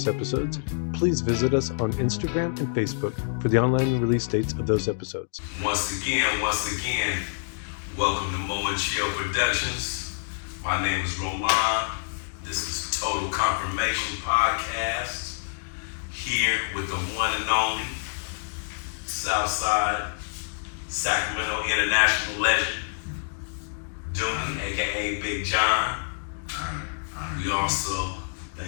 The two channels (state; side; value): silent; right; digital silence